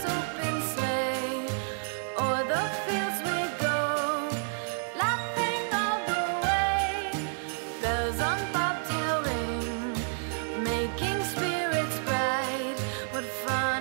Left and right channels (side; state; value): left; silent; 58 dB below the other